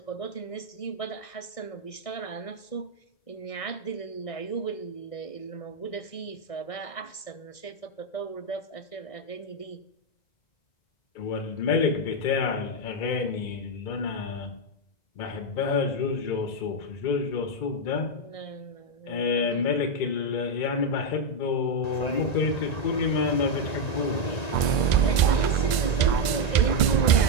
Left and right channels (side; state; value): right; late; 1.9 ms